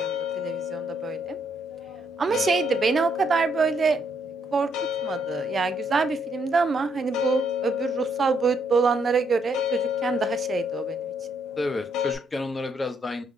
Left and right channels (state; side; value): normal; both; correlation 0.73